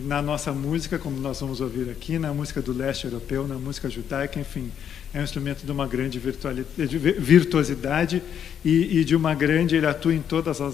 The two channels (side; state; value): right; quieter; 8.7 dB